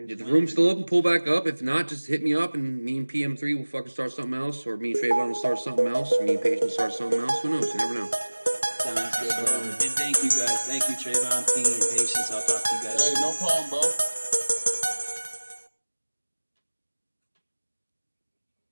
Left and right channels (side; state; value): both; inverted; correlation -1.00